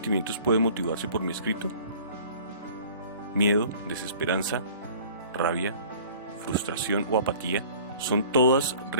pueden motivarse por mi escrito? Miedo, desesperanza, rabia, frustración o apatía son todas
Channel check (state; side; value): inverted; both; correlation -0.48